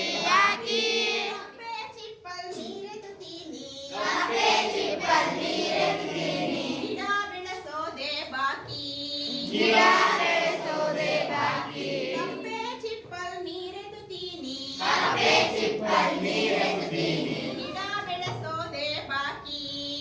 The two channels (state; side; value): identical; both; correlation 1.00